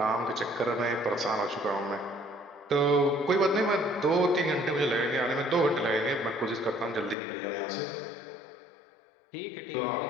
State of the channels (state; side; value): drops out; right; at 7.2 s